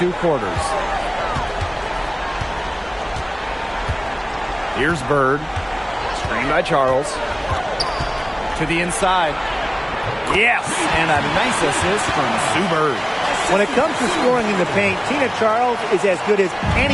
quarters. Here's Bird. Screen by Charles. To the inside. Yes! And a nice assist from Sue Bird. When it comes to scoring in the paint, Tina Charles is as good as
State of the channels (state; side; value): identical; both; correlation 1.00